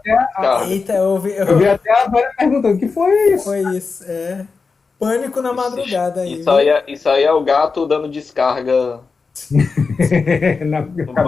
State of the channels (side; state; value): right; quieter; 4.6 dB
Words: vi até a Vera perguntando: o que foi isso? Foi isso, Pânico na madrugada aí. Isso aí é o gato dando descarga na